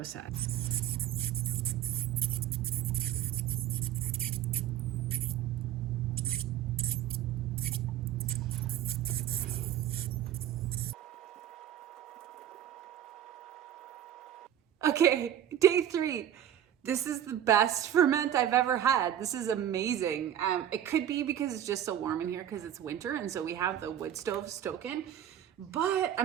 Okay, day 3. This is the best ferment I've ever had. This is amazing. It could be because it's just so warm in here because it's winter and so we have the wood stove stoking. But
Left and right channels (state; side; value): quieter; left; 10.7 dB